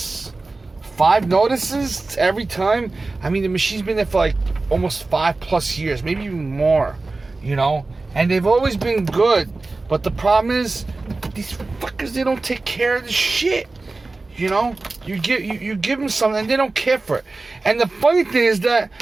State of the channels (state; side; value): quieter; left; 3.4 dB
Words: 5 notices every time? I mean, the machine's been there for like almost 5+ years, maybe even more, you know? And they've always been good. But the problem is, these fuckers, they don't take care of the shit. You know, you give them something and they don't care for it. And the funny thing is that